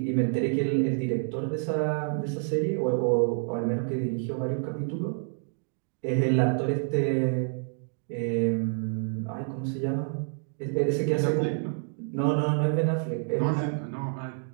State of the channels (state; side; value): silent; left; digital silence